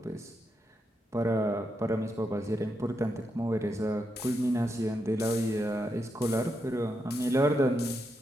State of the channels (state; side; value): normal; both; correlation 0.83